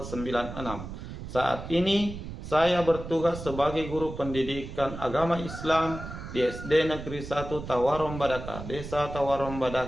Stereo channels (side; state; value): right; noise; rumble, 10 dB below the sound